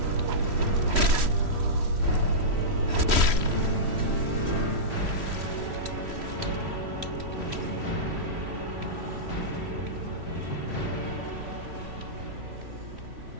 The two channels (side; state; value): left; late; 3.1 ms